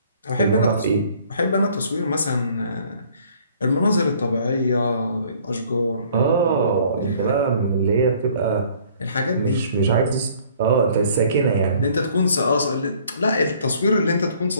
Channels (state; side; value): inverted; both; correlation -0.57